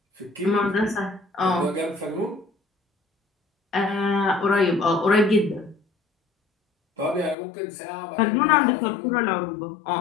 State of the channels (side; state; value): right; drops out; at 7.4 s